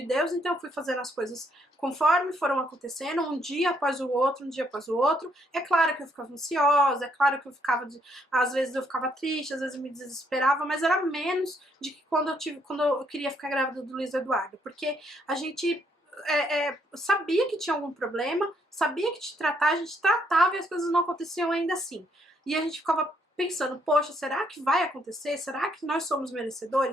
Deus, então eu fui fazendo as coisas conforme foram acontecendo, um dia após o outro, um dia após o outro. É claro que eu ficava ansiosa, é claro que eu ficava, às vezes eu ficava triste, às vezes eu me desesperava, mas era menos de que quando eu queria ficar grávida do Luiz Eduardo, porque a gente sabia que tinha algum problema, sabia que te tratar, a gente tratava e as coisas não aconteciam ainda assim. E a gente ficava pensando, poxa, será que vai acontecer? Será que nós somos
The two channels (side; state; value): both; normal; correlation 0.72